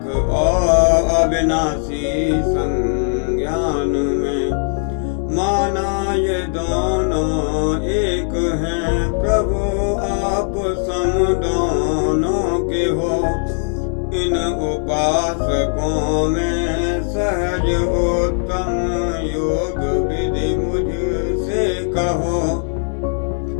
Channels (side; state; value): right; silent; 67 dB below the other